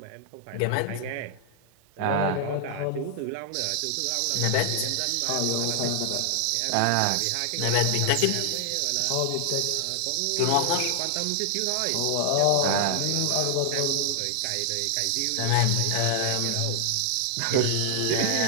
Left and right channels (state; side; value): different; both; correlation 0.00